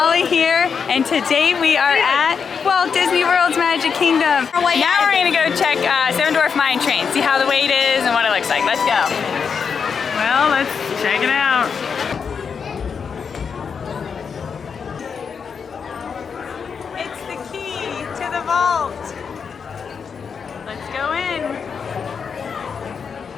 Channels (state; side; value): quieter; right; 6.2 dB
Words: here, and today we are at Walt Disney World's Magic Kingdom. Now we're gonna go check Seven Dwarf Mine Train, see how the wait is and what it looks like. Let's go. Well, let's check it out. It's the key to the vault. Let's go in.